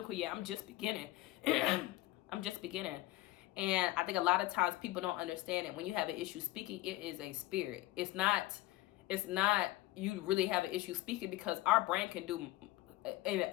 yet. I'm just beginning. I'm just beginning. And I think a lot of times people don't understand it. When you have an issue speaking, it is a spirit. It's not you really have an issue speaking, because our brain can do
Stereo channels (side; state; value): right; quieter; 17.2 dB